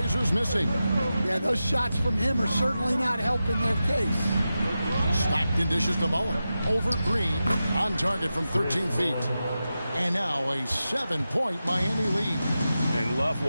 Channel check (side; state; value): both; inverted; correlation -0.92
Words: missing. Yeah, those shots from him are certainly not helping their case. Stockton dishes to Mullen. Over Green. On target from 13 feet. And now a 7-point Miami lead. And love